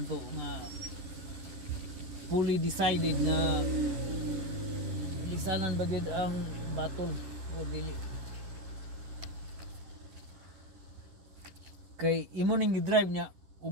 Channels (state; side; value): late; left; 11 ms